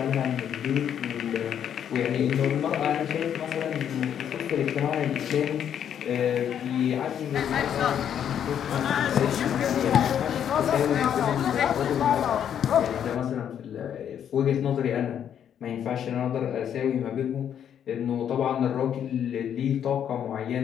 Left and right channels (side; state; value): right; quieter; 9.2 dB